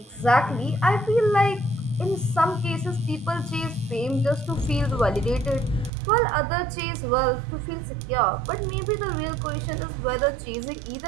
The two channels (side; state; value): left; drops out; at 5.9 s